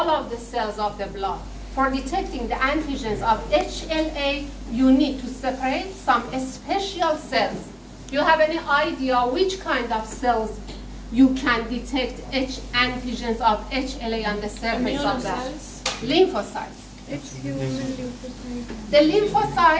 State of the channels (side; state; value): both; identical; correlation 1.00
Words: of the cells of the blood. For detecting the antigens of HLA, you need to separate some special cells. Do you have any idea which kind of cells you can detect antigens of HLA on the surface of that? Lymphocytes. It's human lymphocytes. The